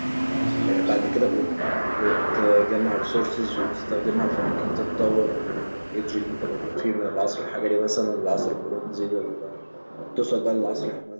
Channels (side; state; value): both; inverted; correlation -1.00